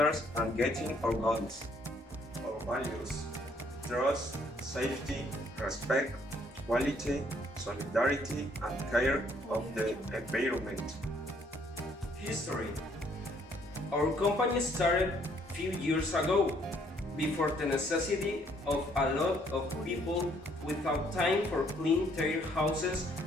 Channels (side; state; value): both; normal; correlation 0.66